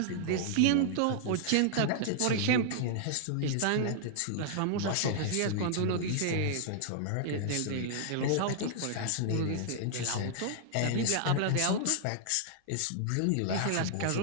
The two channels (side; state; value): both; different; correlation -0.01